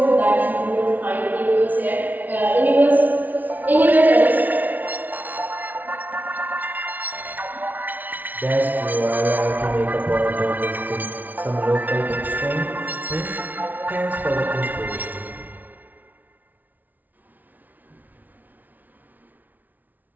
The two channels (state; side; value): late; left; 0.080 ms